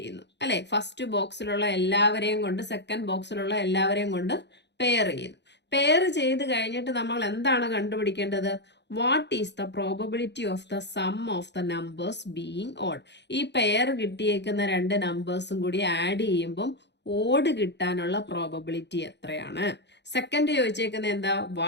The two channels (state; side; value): late; right; 0.50 ms